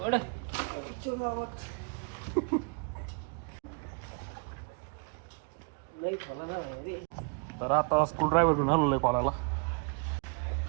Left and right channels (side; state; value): left; quieter; 36.5 dB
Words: तर आता स्क्रू ड्रायव्हर घेऊन आलेलो आहे कॉलाला